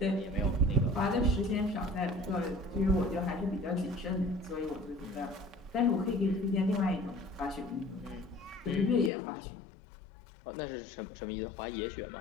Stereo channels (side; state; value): right; drops out; at 9.1 s